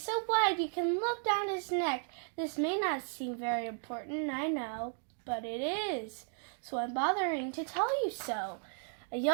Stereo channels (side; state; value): left; silent; 55 dB below the other